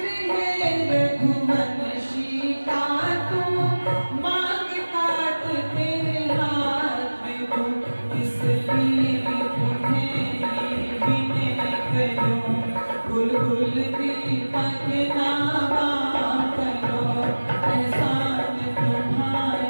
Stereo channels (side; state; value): both; inverted; correlation -1.00